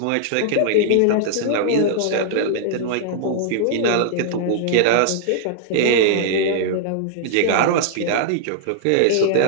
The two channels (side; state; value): both; different; correlation -0.01